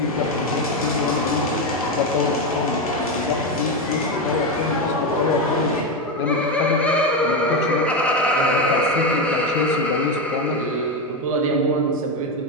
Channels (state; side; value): normal; both; correlation 0.11